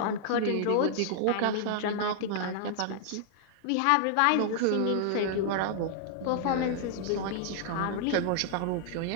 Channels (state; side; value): different; both; correlation -0.01